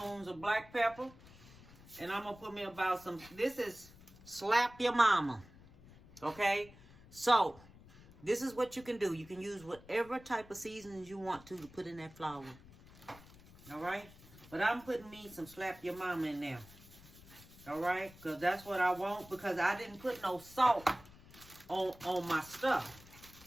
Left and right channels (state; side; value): noise; left; rumble, 21 dB below the sound